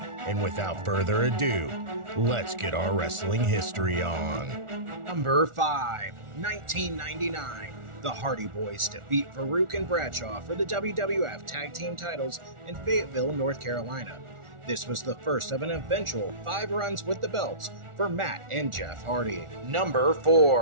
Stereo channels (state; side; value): late; left; 1.4 ms